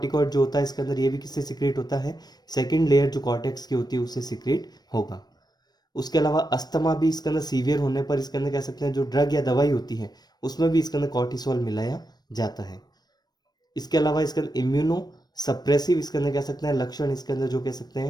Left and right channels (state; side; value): late; right; 0.19 ms